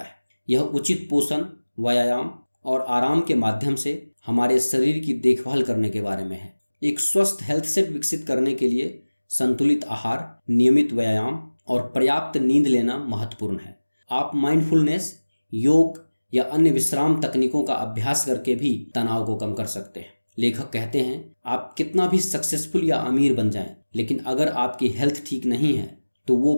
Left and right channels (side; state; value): both; inverted; correlation -1.00